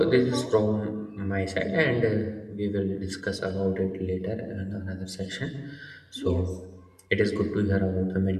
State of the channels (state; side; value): identical; both; correlation 1.00